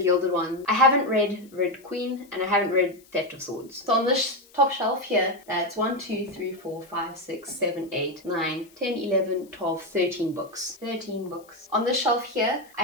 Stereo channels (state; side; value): noise; left; hiss, 28 dB below the sound